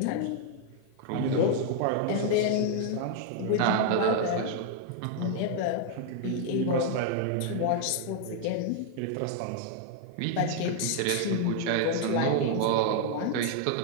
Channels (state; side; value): different; both; correlation 0.00